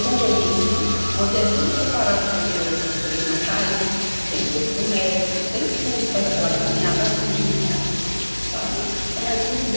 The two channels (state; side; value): inverted; both; correlation -1.00